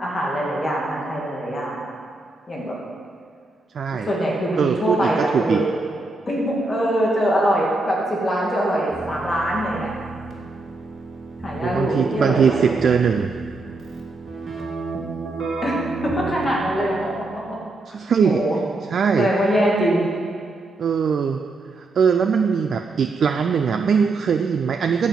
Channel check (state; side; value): quieter; left; 3.2 dB